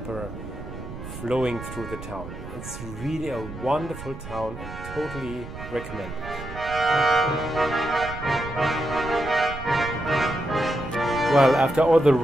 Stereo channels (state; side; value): noise; right; rumble, 11 dB below the sound